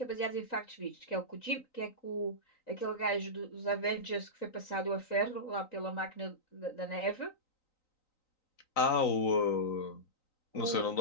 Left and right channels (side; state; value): right; late; 3.9 ms